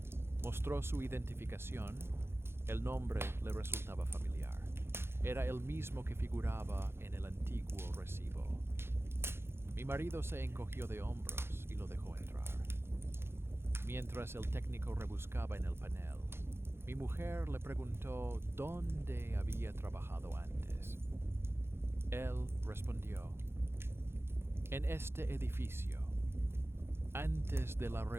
Mostró su identificación. El nombre le resultaba familiar. Era el mismo que figuraba en el antiguo recibo. Mi marido se encogió de hombros y lo dejó entrar. Mientras el técnico rebuscaba en el panel, mi mujer le preguntó dónde había trabajado antes. Él respondió: en este edificio, antes de la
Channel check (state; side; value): late; left; 0.12 ms